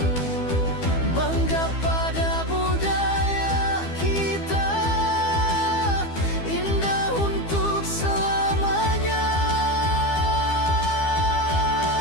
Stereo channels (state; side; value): late; right; 12 ms